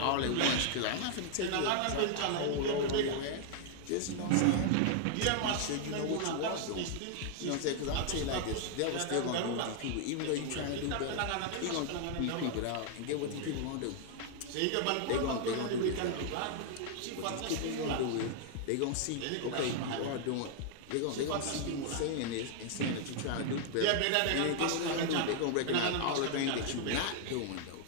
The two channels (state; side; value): different; both; correlation 0.00